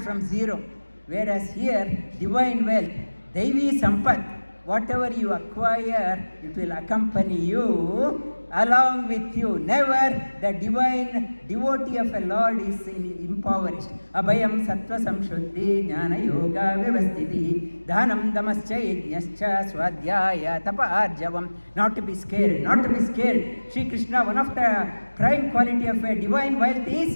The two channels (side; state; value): both; inverted; correlation -1.00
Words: zero. Whereas here, divine wealth, Devi Sampat, whatever you acquire, it will accompany you along with you. Never the divine devotee of a Lord is impoverished. Abhayam sattva samshuddhi jnana yoga vyavasthiti dhanam damascha yajnascha swadhyaya tapa arjavam. Not to be scared, not to be scared. Shri Krishna, one of the prime quality of a divine wealth